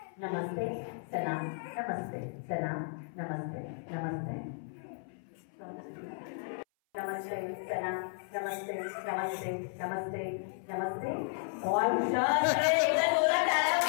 नमस्ते सलाम नमस्ते सलाम नमस्ते नमस्ते नमस्ते सलाम नमस्ते नमस्ते नमस्ते नमस्ते. और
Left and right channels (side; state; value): right; silent; 55 dB below the other